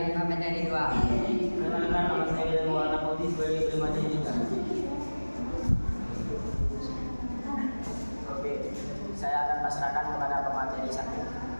pemateri 2. Perkenalkan, nama saya William Maulana Putih sebagai pemateri 3. Oke, saya akan pasrahkan kepada pemateri 1.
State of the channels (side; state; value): both; inverted; correlation -1.00